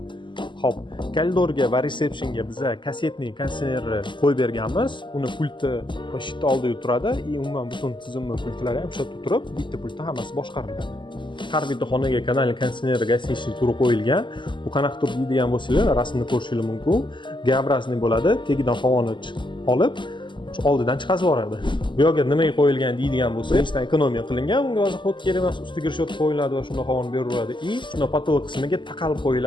Xo'p, koridorga va resepsiyonga biz kassetniy konditsionerni qo'yib berganmiz. Uni pulti va shit oldida turadi. Umuman butun tizimning pultlari ham shu yerda turib, bitta pultda hammasi boshqariladi. Har bitta xonaga kanalli konditsioner gasinchli turi qo'yilgan. Bu qanaqa tur deydigan bo'lsanglar, rasmni ko'rishingiz mumkin. G-obrazniy bo'ladi. Tagidan havoni olib, oldidan chiqazib yuboradi. Bu yerga nimaga qo'yilgan deydigan bo'lsa, birinchidan ekonomiya qilingan. Bunga hozir xod kerak emas, ustiga rishot qo'yiladi va shunda havoni beraveradi. Shunda patolog qismiga taqalib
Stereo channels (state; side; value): late; right; 0.23 ms